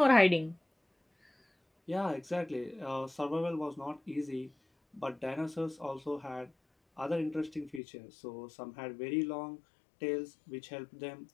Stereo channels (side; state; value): right; drops out; at 7.8 s